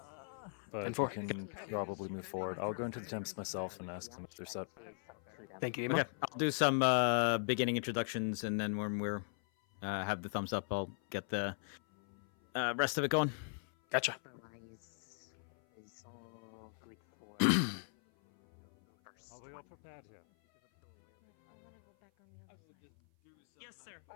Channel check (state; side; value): silent; right; 52 dB below the other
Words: But And for- we can probably move forward. I'll go into the temps myself and ask them if they're set. Thank you, Emo. Okay, I'll do some beginning introductions, and then when we're have the thumbs up, I'll get the rest of it going. Gotcha. Otherwise, is all good for first. Are we all prepared here? I want to go back on the other side. Yes, sir.